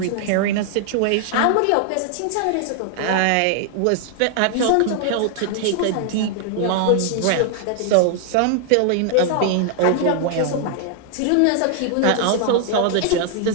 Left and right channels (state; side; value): different; both; correlation 0.00